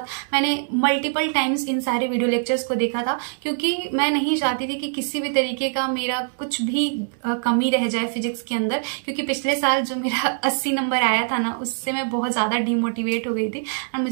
मैंने मल्टीपल टाइम्स इन सारे वीडियो लेक्चर्स को देखा था, क्योंकि मैं नहीं चाहती थी कि किसी भी तरीके का मेरा कुछ भी कमी रह जाए फिजिक्स के अंदर। क्योंकि पिछले साल जो मेरा 80 नंबर आया था ना, उससे मैं बहुत ज्यादा डिमोटिवेट हो गई थी और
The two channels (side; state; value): left; silent; 63 dB below the other